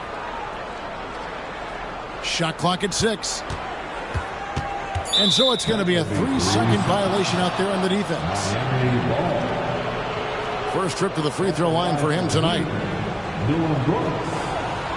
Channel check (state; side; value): identical; both; correlation 1.00